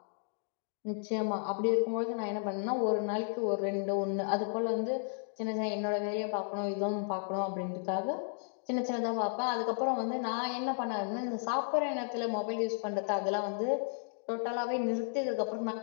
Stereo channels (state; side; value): silent; right; digital silence